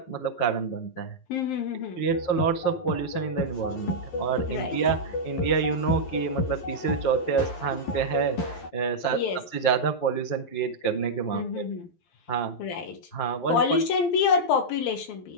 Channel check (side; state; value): right; late; 12 ms